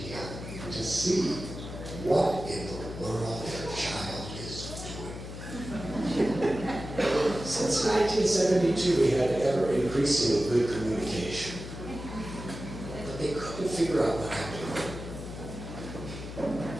to see what in the world their child is doing. Since 1972, we had ever-increasing good communication. But they couldn't figure out what happened.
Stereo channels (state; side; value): noise; left; hum, 10 dB below the sound